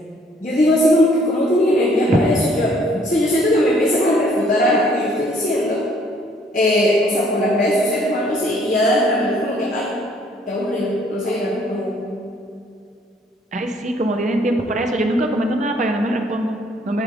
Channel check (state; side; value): normal; both; correlation 0.62